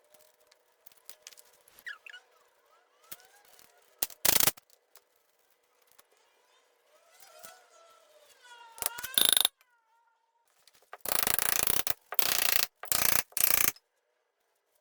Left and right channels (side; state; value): both; identical; correlation 1.00